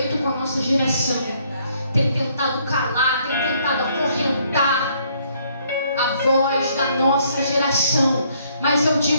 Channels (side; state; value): both; inverted; correlation -0.67